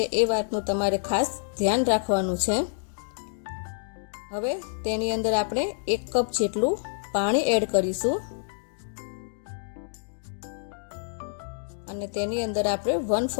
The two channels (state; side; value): silent; right; digital silence